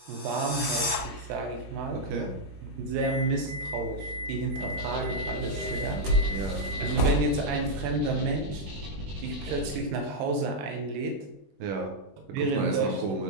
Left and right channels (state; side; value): late; left; 20 ms